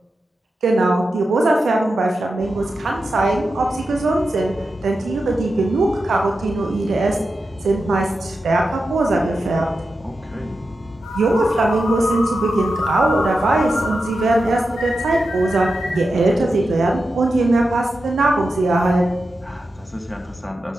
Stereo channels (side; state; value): both; normal; correlation 0.90